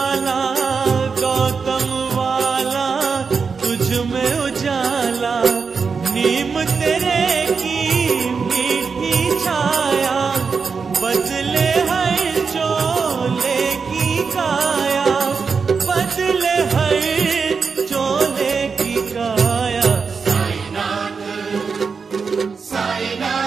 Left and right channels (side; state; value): left; quieter; 5.3 dB